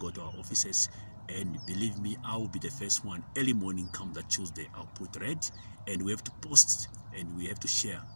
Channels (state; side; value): inverted; both; correlation -1.00